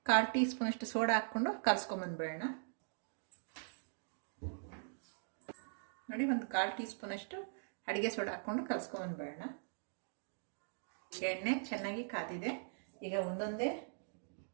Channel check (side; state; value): left; silent; digital silence